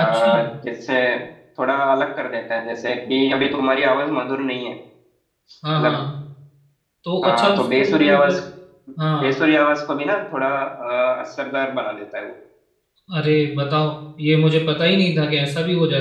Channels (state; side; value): identical; both; correlation 1.00